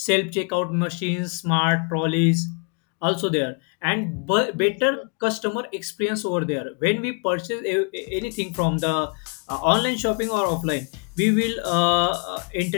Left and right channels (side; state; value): right; quieter; 36.5 dB